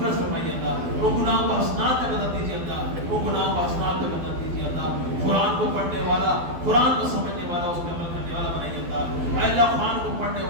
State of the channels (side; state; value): left; late; 12 ms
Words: فرمائیے اللہ، ان گناہوں کو حسنات میں بدل دیجیے اللہ، ان گناہوں کو حسنات میں بدل دیجیے اللہ، قرآن کو پڑھنے والا، قرآن کو سمجھنے والا، اس پہ عمل کرنے والا بنائیے اللہ۔ اے اللہ، قرآن کو پڑھنے پڑھنے